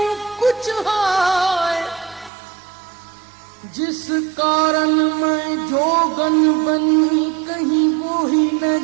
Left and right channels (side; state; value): left; drops out; at 2.3 s